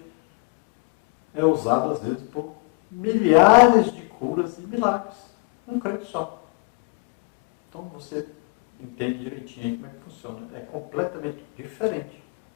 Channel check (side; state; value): right; quieter; 31.8 dB